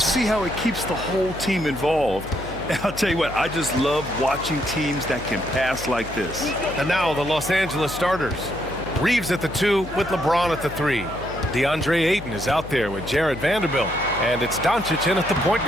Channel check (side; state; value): left; noise; hum, 13 dB below the sound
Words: see how it keeps the whole team involved. And I'll tell you what, I just love watching teams that can pass like this. And now the Los Angeles starters. Reeves at the 2 with LeBron at the 3. DeAndre Ayton is out there with Jared Vanderbilt. And it's Doncic in at the point